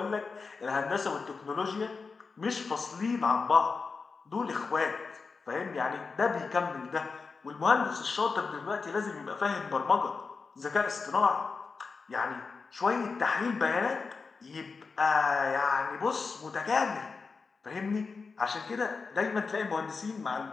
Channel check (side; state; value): right; quieter; 4.7 dB